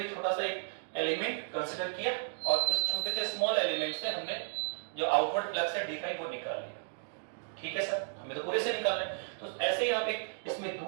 छोटा सा एक एलिमेंट कंसीडर किया और उस छोटे से स्मॉल एलिमेंट से हमने जो आउटवर्ड फ्लक्स है d5 वो निकाल लिया। ठीक है सर, हमें तो पूरे से निकालना है। तो ऐसे ही आप एक इसमें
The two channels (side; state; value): left; silent; digital silence